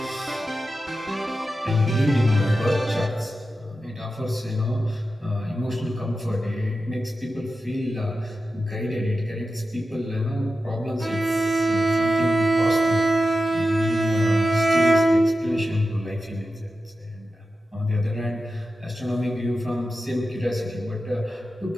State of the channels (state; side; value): normal; both; correlation 0.91